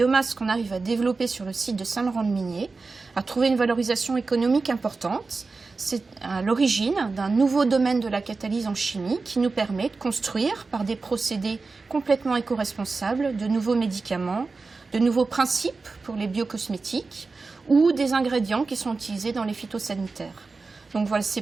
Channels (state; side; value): quieter; left; 4.0 dB